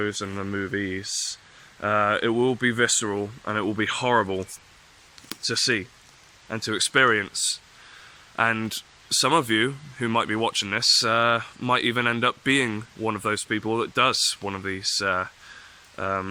and the movies. It will be visceral, and it will be horrible to see and to experience. And some of you who might be watching this might even end up being one of those people that does one of these,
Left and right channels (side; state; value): both; identical; correlation 1.00